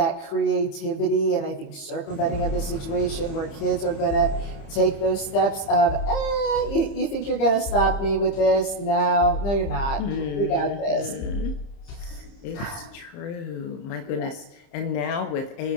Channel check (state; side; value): late; right; 30 ms